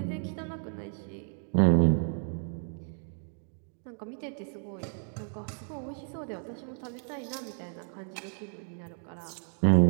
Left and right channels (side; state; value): left; silent; 56 dB below the other